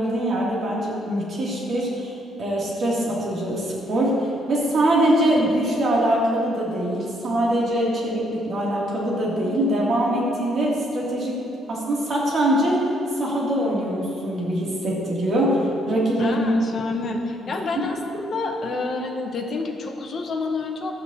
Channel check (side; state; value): both; normal; correlation 0.70